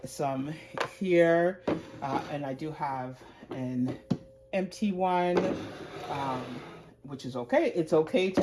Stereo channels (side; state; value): both; identical; correlation 1.00